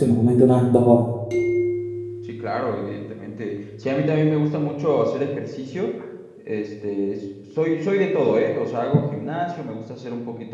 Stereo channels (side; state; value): both; identical; correlation 1.00